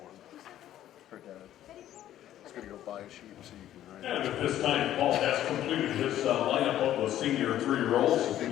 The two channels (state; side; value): quieter; right; 12.3 dB